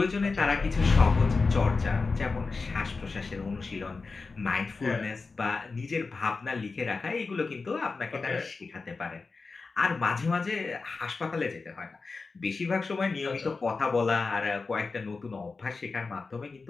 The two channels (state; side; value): quieter; right; 4.2 dB